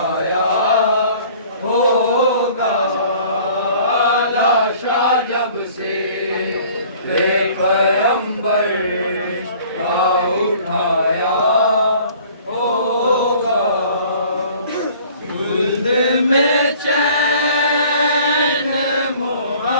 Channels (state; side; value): inverted; both; correlation -0.52